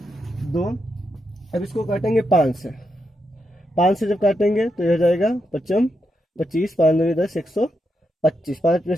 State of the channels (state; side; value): normal; both; correlation 0.84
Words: 2। अब इसको काटेंगे 5 से, 5 से जब काटेंगे तो यह हो जाएगा 55 25, 5 2 10 125, 5 में